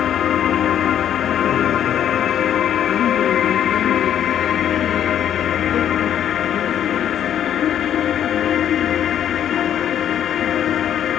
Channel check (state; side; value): quieter; right; 10.1 dB